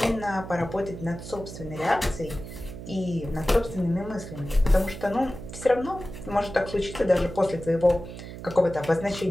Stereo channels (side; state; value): right; noise; hum, 11 dB below the sound